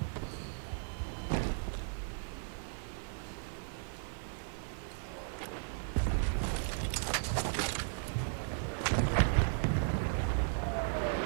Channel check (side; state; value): left; silent; digital silence